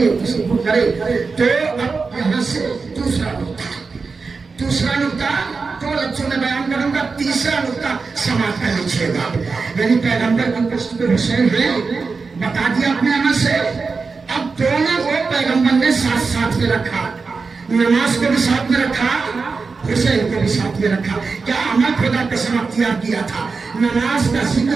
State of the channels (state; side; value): quieter; left; 4.5 dB